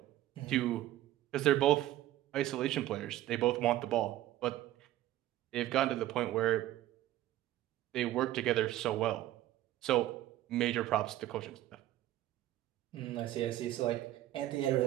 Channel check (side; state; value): left; quieter; 14.4 dB